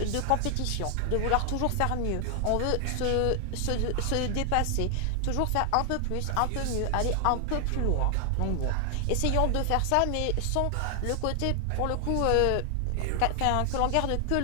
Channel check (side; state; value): both; different; correlation 0.00